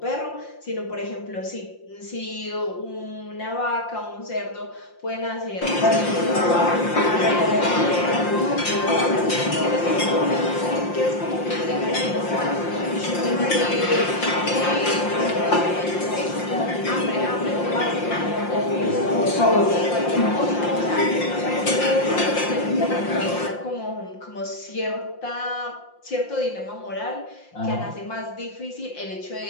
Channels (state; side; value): late; right; 5.7 ms